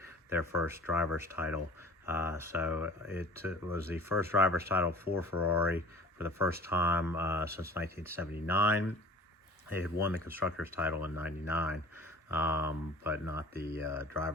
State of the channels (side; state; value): both; normal; correlation 0.44